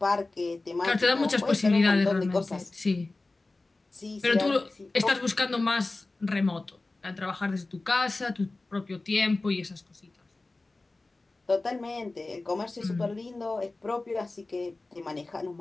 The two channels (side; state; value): right; quieter; 3.2 dB